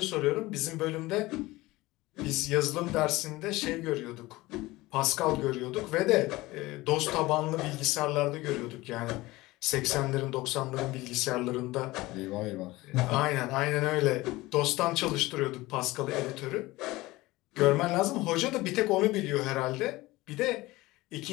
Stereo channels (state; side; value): quieter; right; 19.7 dB